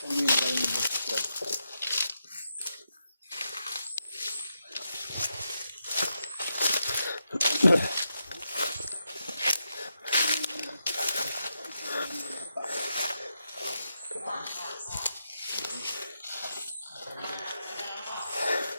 Hindi na galing yung busos.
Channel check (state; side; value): inverted; both; correlation -0.85